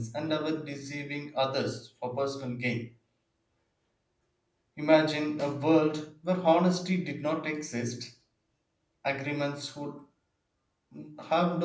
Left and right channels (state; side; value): identical; both; correlation 1.00